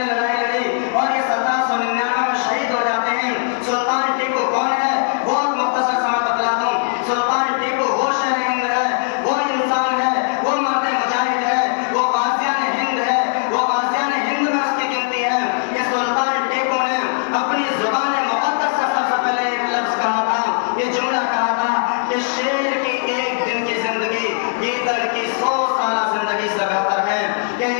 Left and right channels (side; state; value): right; silent; digital silence